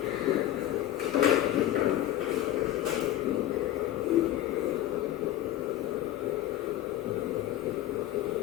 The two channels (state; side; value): quieter; right; 13.6 dB